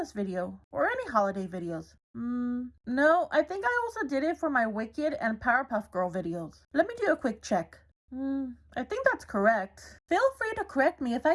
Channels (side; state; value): both; identical; correlation 1.00